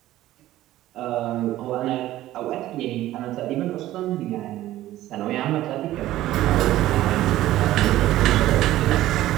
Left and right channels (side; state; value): left; quieter; 14.7 dB